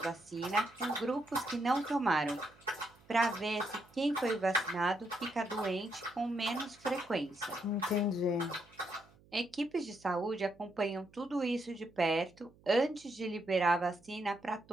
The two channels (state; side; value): noise; right; hum, 28 dB below the sound